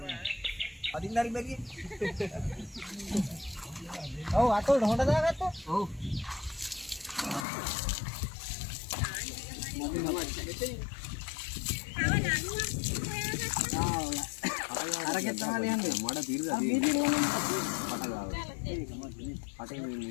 අදින්න හරි බැරිය. ඔව් අතෝට හොඳ දාගත්තා. ඔව්. අරගෙන තමයි යන්නේ. මඩ පිරලා තියෙනවා. පට ගාව. පටේ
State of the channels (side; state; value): right; drops out; at 7.5 s